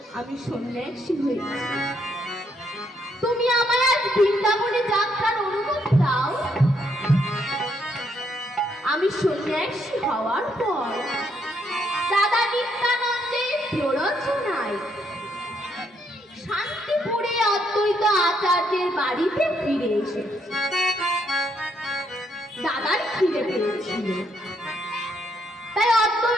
আমি সন্ন্যাসী হয়েছি। তুমি আমায় আজ বৃন্দাবনে যাত্রার অনুমতি দাও। আমি সন্ন্যাসী হওয়ার পর দাদা নিত্যানন্দের প্ররোচনায় শান্তিপুরে অদ্বৈত আচার্যের বাড়িতে ফিরে এসেছি। দাদার খিদে পেয়েছিল, তাই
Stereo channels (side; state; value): both; normal; correlation 0.74